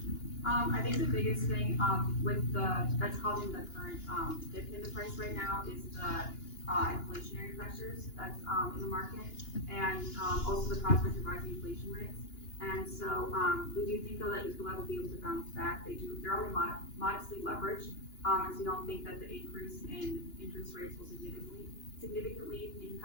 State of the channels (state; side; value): late; right; 2.9 ms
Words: I think the biggest thing with that's causing the current dip in the price right now is the inflationary pressures that's in the market, and also the prospect of rising inflation rates. And so we do think though that Ecolab will be able to bounce back. They're only modestly leveraged, and so we don't think that the increase in interest rates will significantly